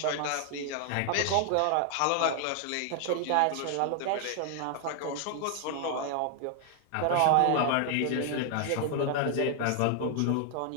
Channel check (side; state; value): both; different; correlation 0.00